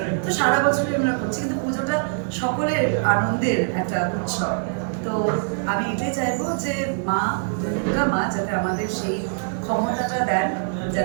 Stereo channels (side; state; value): left; silent; digital silence